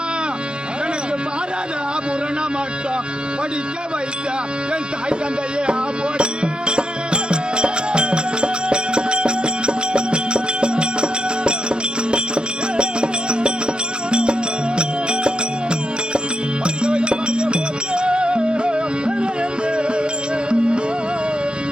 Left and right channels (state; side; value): late; left; 0.049 ms